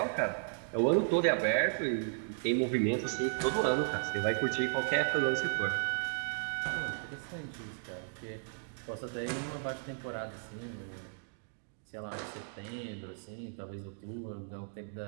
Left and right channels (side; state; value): left; silent; digital silence